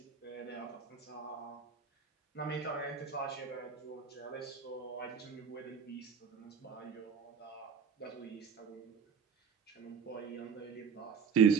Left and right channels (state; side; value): quieter; left; 6.5 dB